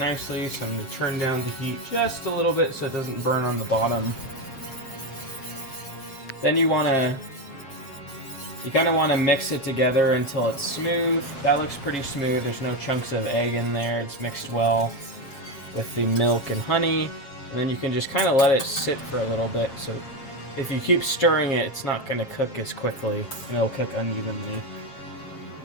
so I'm going to turn down the heat just a little bit so it doesn't burn on the bottom. Then you kind of want to mix it together until it's smooth. That looks pretty smooth. There's no chunks of egg in there. It's mixed well with the milk and honey. And then you can just kind of let it sit for a little bit. So if you keep stirring it, it's not going to cook as quickly and it'll cook unevenly.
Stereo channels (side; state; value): right; late; 7.4 ms